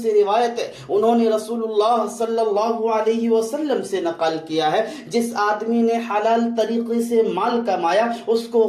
روایت ہے، انہوں نے رسول اللہ صلی اللہ علیہ وسلم سے نقل کیا ہے جس آدمی نے حلال طریقے سے مال کمایا اس کو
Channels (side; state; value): both; identical; correlation 1.00